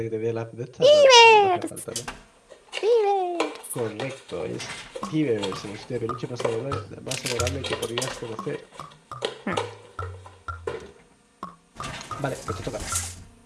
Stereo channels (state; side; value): identical; both; correlation 1.00